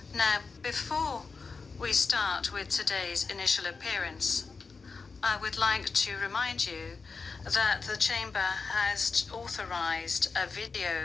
Now, before we start with today's initial appearance, I would like to remind you that the Chamber has authorized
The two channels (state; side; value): quieter; right; 4.6 dB